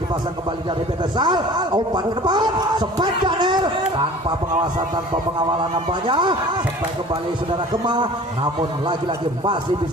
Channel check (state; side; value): normal; both; correlation 0.44